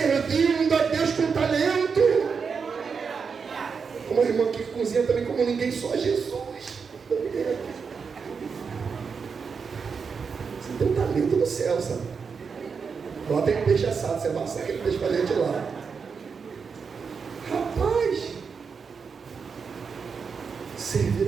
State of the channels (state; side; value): quieter; left; 5.7 dB